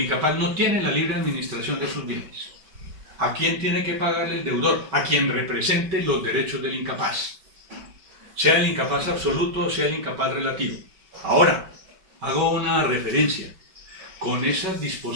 no tiene la libre administración de sus bienes. ¿A quién tiene que pagarle el deudor? A quien represente los derechos del incapaz. Sea el incapaz absoluto o sea el incapaz relativo. Ahora, hago una referencia. Con esas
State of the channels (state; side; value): late; left; 5.2 ms